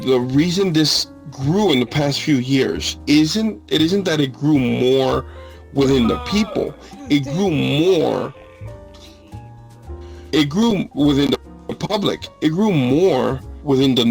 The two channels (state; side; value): identical; both; correlation 1.00